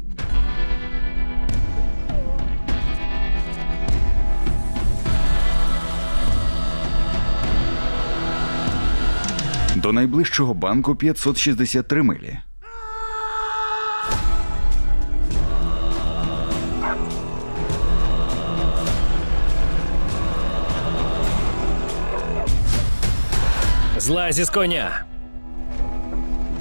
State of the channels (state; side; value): inverted; both; correlation -1.00